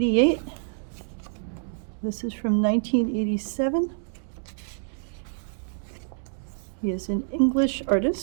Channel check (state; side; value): silent; left; digital silence